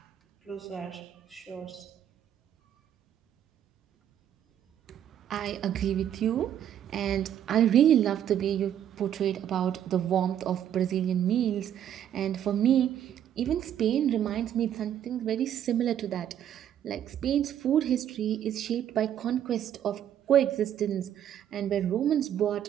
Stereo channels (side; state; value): left; quieter; 10.2 dB